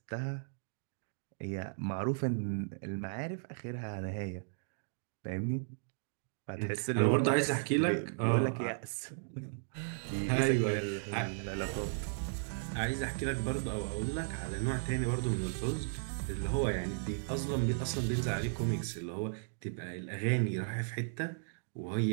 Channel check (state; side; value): silent; left; digital silence